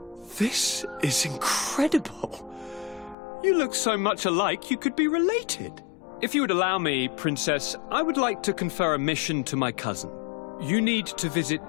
This is incredible. You look so much alike you could be related. If you would allow me, Princess, I would like to confer a mission to my cousin. You need to visit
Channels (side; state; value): right; drops out; at 3.2 s